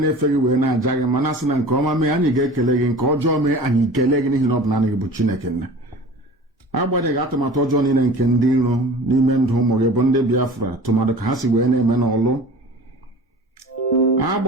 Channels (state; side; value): normal; both; correlation 0.40